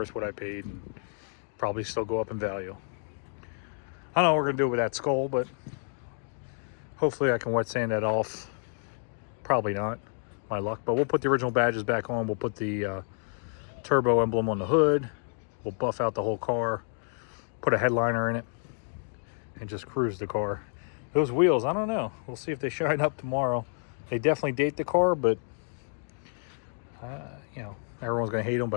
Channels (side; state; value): right; silent; 58 dB below the other